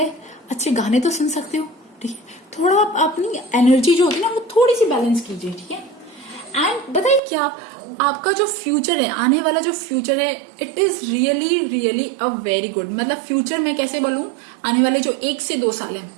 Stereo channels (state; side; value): drops out; left; at 7.2 s